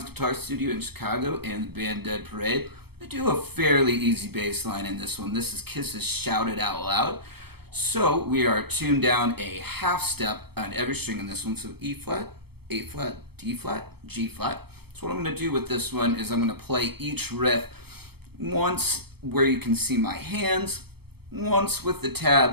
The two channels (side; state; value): left; late; 0.96 ms